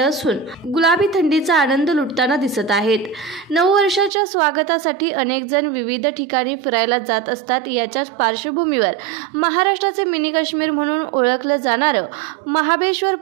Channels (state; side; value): drops out; left; at 4.1 s